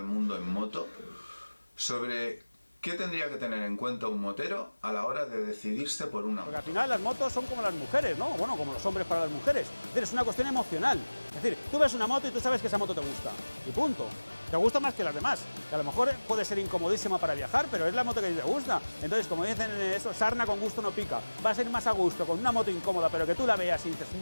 mundo en moto, sobre qué tendría que tener en cuenta un motero a la hora de decidirse por una moto. Porque al final las motos son como las mujeres, ¿no? Bueno, como los hombres para las mujeres. Es una cuestión emocional. Es decir, tú ves una moto y tú sabes que esa moto te gusta. Y punto. Te gusta más que las demás. Que a lo mejor puede ser incomodísima para viajar, pero es la moto que te gusta. Entonces, como dicen eso, sarna con gusto no pica. Va a ser más a gusto con una moto incómoda, pero que tú la veas y dices,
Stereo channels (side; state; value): both; inverted; correlation -1.00